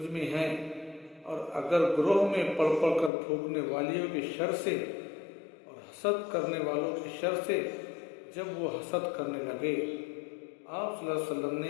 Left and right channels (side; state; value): right; drops out; at 3.1 s